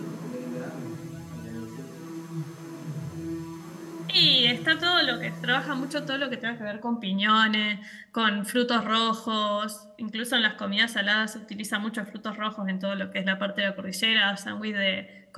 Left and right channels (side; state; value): both; identical; correlation 1.00